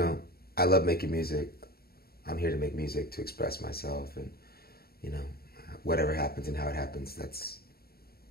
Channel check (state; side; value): late; right; 0.45 ms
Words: love making music. I'm here to make music, to express myself, and, whatever happens and how it happens, that's